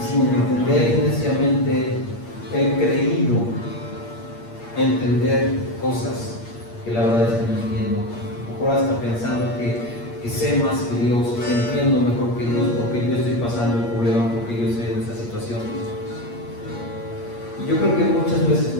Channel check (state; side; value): late; right; 8.6 ms